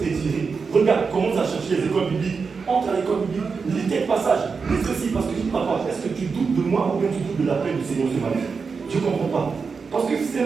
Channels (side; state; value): left; quieter; 5.1 dB